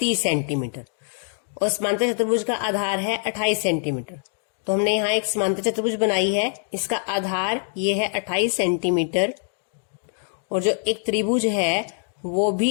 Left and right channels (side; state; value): right; silent; 63 dB below the other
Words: सेंटीमीटर और समांतर चतुर्भुज का आधार है 28 सेंटीमीटर। तो हमने यहाँ एक समांतर चतुर्भुज बनाई है, इसका आधार ये है 28 सेंटीमीटर और जो एक त्रिभुज है वो भी